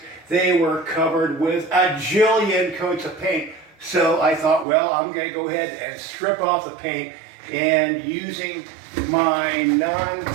they were covered with a jillion coats of paint, so I thought, well, I'm going to go ahead and strip off the paint, and using my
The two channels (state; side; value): drops out; left; at 4.7 s